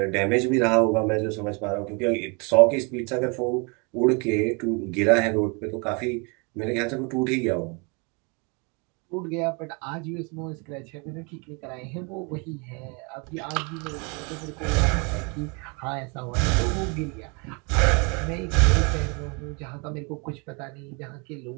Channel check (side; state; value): left; quieter; 32.2 dB